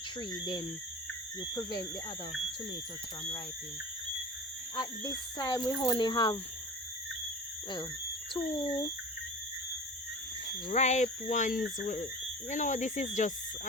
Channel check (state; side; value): normal; both; correlation 0.35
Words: then you prevent the other tomatoes from ripening. At this time we only have, well, two ripe ones. You know, this is just